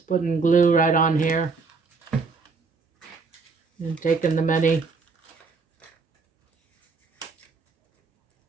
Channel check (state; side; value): quieter; left; 4.5 dB